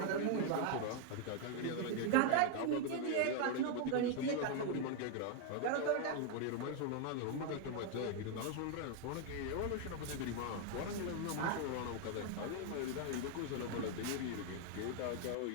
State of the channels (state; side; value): different; both; correlation 0.00